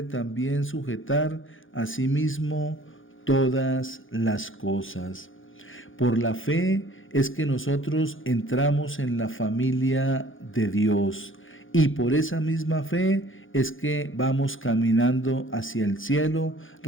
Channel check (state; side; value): late; right; 0.58 ms